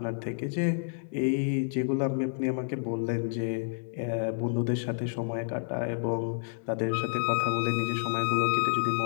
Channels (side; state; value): right; silent; digital silence